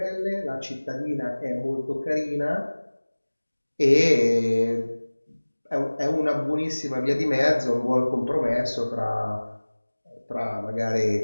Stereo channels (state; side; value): inverted; both; correlation -1.00